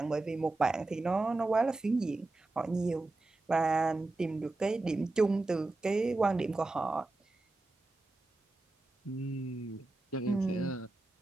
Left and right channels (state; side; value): quieter; left; 3.1 dB